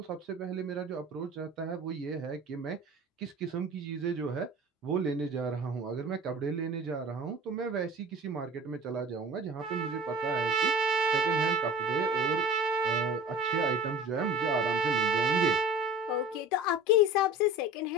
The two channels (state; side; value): normal; both; correlation 0.39